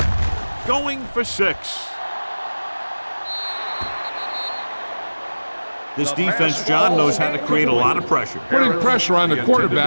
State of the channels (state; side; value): inverted; both; correlation -1.00